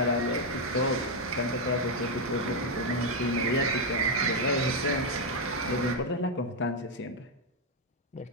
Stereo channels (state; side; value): normal; both; correlation 0.01